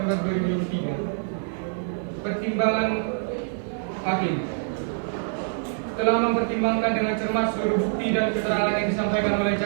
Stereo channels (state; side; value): silent; left; digital silence